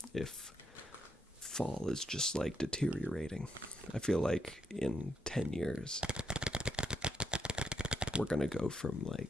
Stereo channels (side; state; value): both; normal; correlation 0.79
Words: if fall is just like deteriorating. I feel like in 10 years we're gonna go from